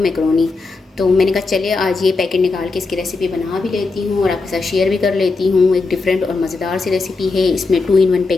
मैकरोनी। तो मैंने कहा चलिए आज ये पैकेट निकाल के इसकी रेसिपी बना भी लेती हूँ और आपके साथ शेयर भी कर लेती हूँ। एक डिफरेंट और मज़ेदार सी रेसिपी है। इसमें 2 in 1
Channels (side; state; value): right; quieter; 3.9 dB